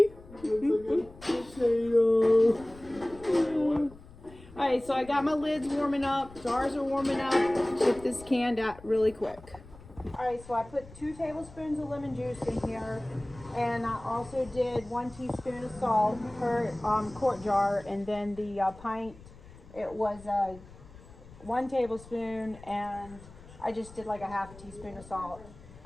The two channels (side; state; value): left; noise; rumble, 20 dB below the sound